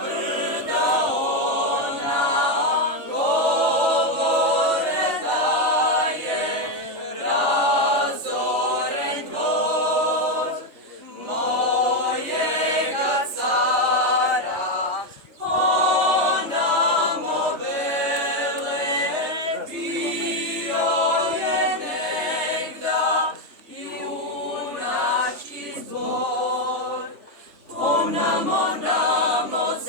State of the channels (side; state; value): left; late; 3.3 ms